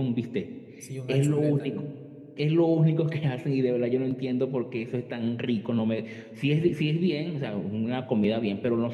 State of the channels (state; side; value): identical; both; correlation 1.00